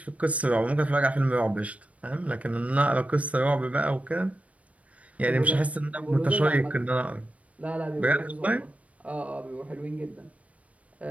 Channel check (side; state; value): left; late; 0.066 ms